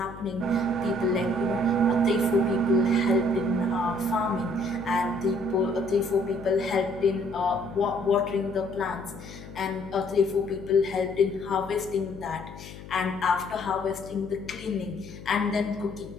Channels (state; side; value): noise; left; hum, 15 dB below the sound